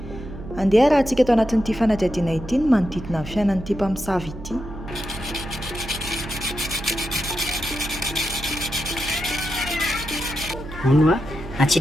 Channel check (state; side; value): noise; right; hum, 13 dB below the sound